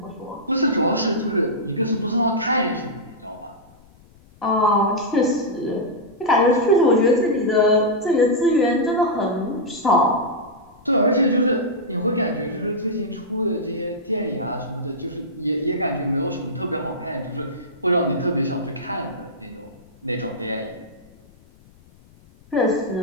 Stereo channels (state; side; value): noise; left; rumble, 27 dB below the sound